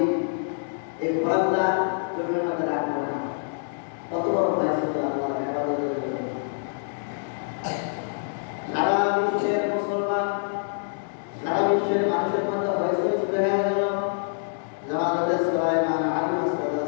এই ঘোড়াগুলা জমির মধ্যে রাখবো না। কত বড় ভয় ছিল আল্লাহর ইবাদতের জন্য। সারা বিশ্বের মুসলমান, সারা বিশ্বের মানুষের মধ্যে হয়েছিল শুরু হয়ে গেল যে হযরত সুলাইমান আলাইহিস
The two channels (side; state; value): right; silent; digital silence